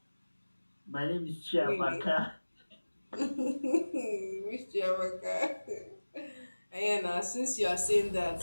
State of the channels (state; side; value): inverted; both; correlation -1.00